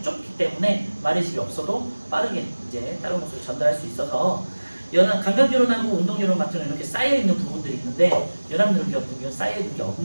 좁기 때문에 마리집이 없어도 빠르게 이제 다른 곳으로 전달할 수 있어서, 감각뉴런하고 운동뉴런 같은 경우는 이렇게 쌓여 있는 부분들이 있는데, 연합뉴런 같은 경우는 쌓여 있는 게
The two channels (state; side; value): inverted; both; correlation -1.00